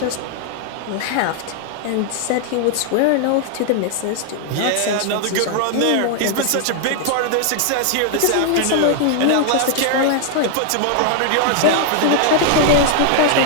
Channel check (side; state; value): both; different; correlation 0.00